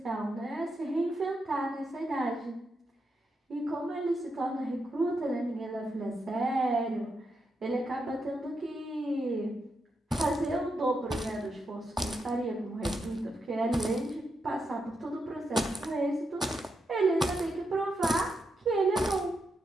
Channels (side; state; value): both; normal; correlation 0.84